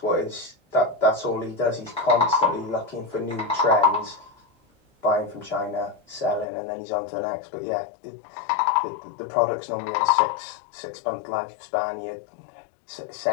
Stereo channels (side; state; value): right; drops out; at 6.5 s